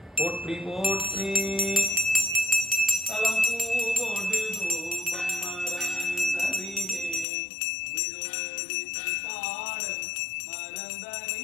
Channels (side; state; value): right; drops out; at 7.2 s